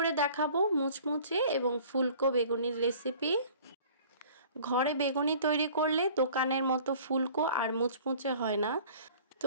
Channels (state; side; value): inverted; both; correlation -0.48